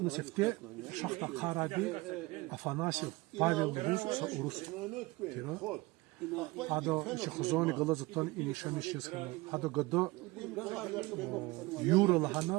несефте шахта каради афанасий павел рус урус тира هذا شخصوني غلطتون إني شمس يسخنا هذا قدو يورو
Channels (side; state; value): left; quieter; 22.3 dB